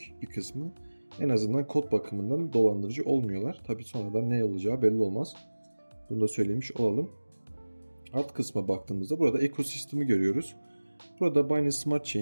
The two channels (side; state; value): both; inverted; correlation -1.00